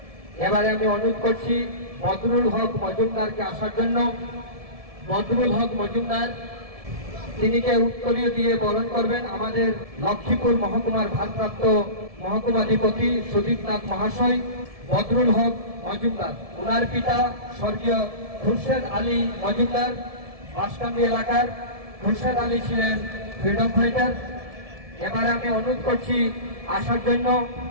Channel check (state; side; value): late; left; 1.7 ms